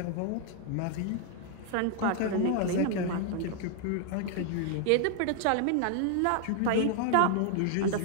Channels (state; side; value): different; both; correlation 0.00